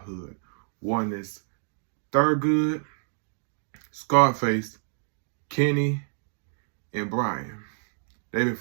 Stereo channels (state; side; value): silent; left; digital silence